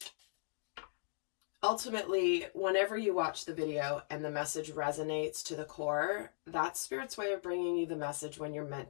ultimately, whenever you watch the video and the message resonates to the core, that's Spirit's way of bringing you the message when you're meant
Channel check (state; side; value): silent; right; digital silence